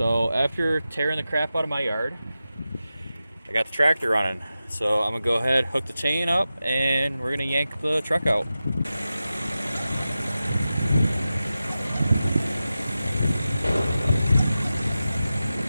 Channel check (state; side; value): inverted; both; correlation -0.93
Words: after tearing the crap out of my yard, I got the tractor running. So I'm gonna go ahead, hook the chain up, and we're gonna yank the truck out.